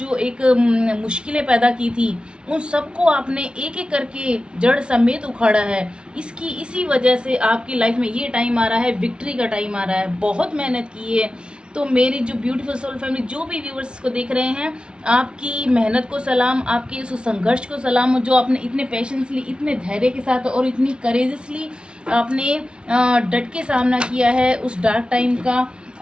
एक मुश्किलें पैदा की थी, उन सबको आपने एक एक करके जड़ समेत उखाड़ा है। इसी वजह से आपकी लाइफ में ये टाइम आ रहा है, विक्ट्री का टाइम आ रहा है। बहुत मेहनत की है। तो मेरी जो ब्यूटीफुल सोल फैमिली, जो भी व्यूवर्स को देख रहे हैं, आपकी मेहनत को सलाम, आपके उस संघर्ष को सलाम, जो आपने इतने पेशेंसली, इतने धैर्य के साथ और इतनी करेजसली आपने डट के सामना किया है उस डार्क टाइम का।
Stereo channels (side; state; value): left; late; 0.056 ms